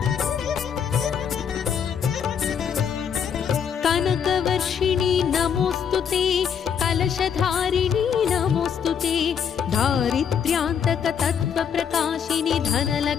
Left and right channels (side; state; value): right; quieter; 7.6 dB